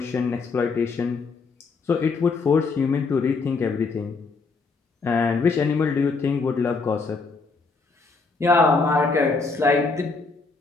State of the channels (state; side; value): quieter; right; 4.3 dB